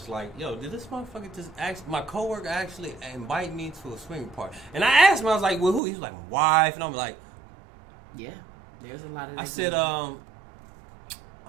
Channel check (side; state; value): left; drops out; at 5.8 s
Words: like, yo, did this motherfucker my coworker actually invite me to a swinger party? And I asked him, I was like, well, who? He was like, my wife, and I'm like, Yeah. There's a lot of. I that said, going on.